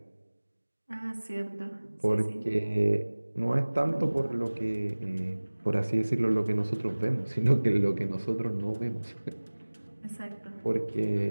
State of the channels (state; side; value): inverted; both; correlation -1.00